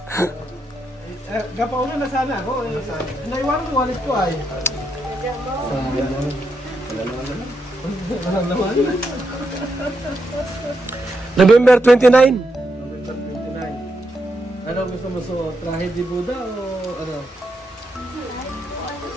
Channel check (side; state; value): both; normal; correlation 0.82